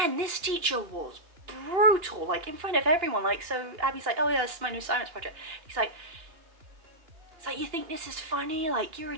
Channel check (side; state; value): left; late; 2.9 ms